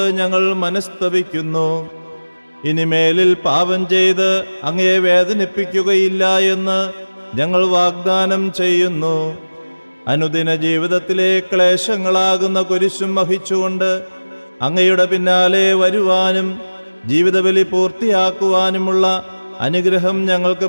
ഞങ്ങൾ മനസ്തപിക്കുന്നു. ഇനിമേലിൽ പാപം ചെയ്ത് അങ്ങയെ വേദനിപ്പിക്കുകയില്ല എന്ന് ഞങ്ങൾ വാഗ്ദാനം ചെയ്യുന്നു. അനുദിന ജീവിതത്തിലെ ക്ലേശങ്ങളാകുന്ന കുരിശും വഹിച്ചുകൊണ്ട് അങ്ങയുടെ പിന്നാലെ വരുവാനും ജീവിതബലി പൂർത്തിയാക്കുവാനുമുള്ള അനുഗ്രഹം ഞങ്ങൾക്ക്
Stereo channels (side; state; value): both; inverted; correlation -1.00